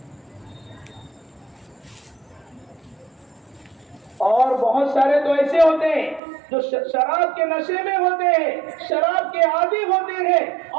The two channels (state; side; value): drops out; left; at 6.2 s